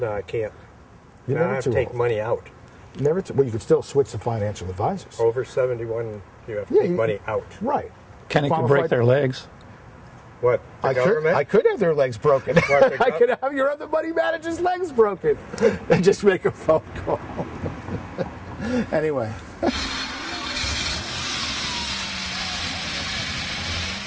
I can't. You're now never I have too to take old. money out. Well, you could still switch to financial advisors. Over 71, you have to Yeah, take money out. Right. Kenny could break their legs. What? The government? I could have their legs broken. I could have your other money manager's legs broken. And just make a phone call. Anyway.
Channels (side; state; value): both; identical; correlation 1.00